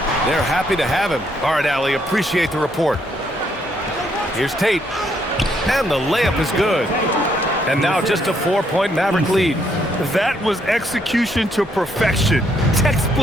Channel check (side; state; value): both; normal; correlation 0.72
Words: They're happy to have him. All right, Allie, appreciate the report. Here's Tate. And the layup is good. And now just a 4-point Maverick lead. That was execution to perfection.